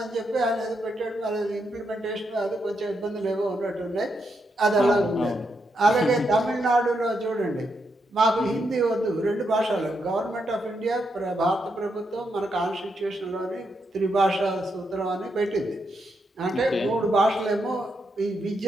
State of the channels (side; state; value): both; normal; correlation 0.81